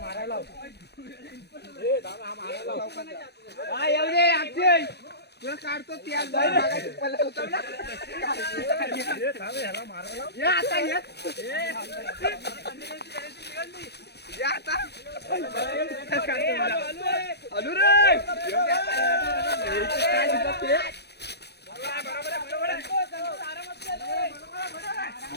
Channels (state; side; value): late; right; 0.48 ms